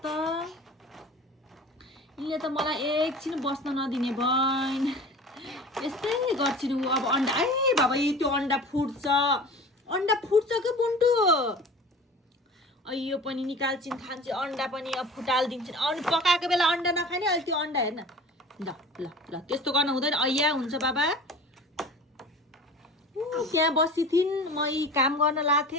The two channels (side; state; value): both; normal; correlation 0.39